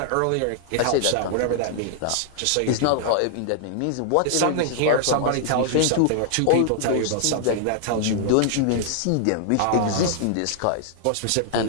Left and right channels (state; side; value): different; both; correlation -0.01